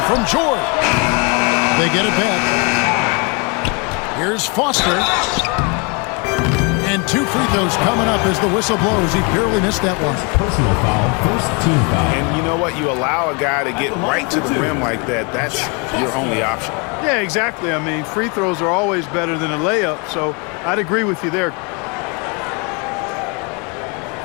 from George. They get it back. Here's Foster. And 2 free throws coming up as the whistle blows. He barely missed that one. Personal foul, first team foul. And you know what? You allow a guy to get right to the rim like that. That's your only option. Yeah, exactly. I mean, free throws are always better than a layup, so I'd agree with you there.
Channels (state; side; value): quieter; right; 32.5 dB